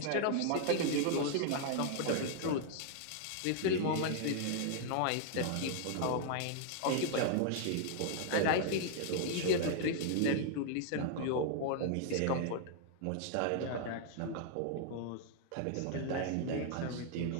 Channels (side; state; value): both; different; correlation 0.00